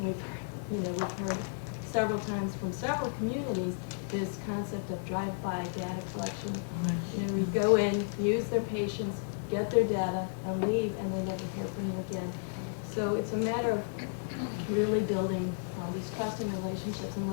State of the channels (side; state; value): right; silent; 56 dB below the other